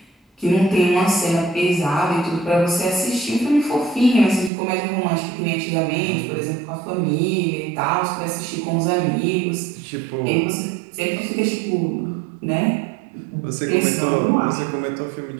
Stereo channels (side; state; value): left; drops out; at 4.5 s